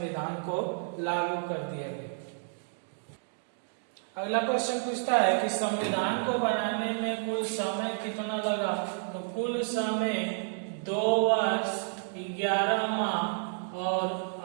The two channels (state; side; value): silent; left; digital silence